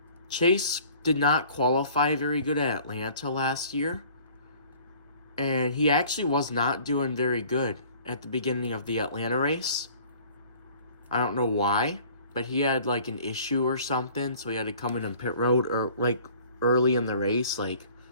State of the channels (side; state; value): both; inverted; correlation -0.51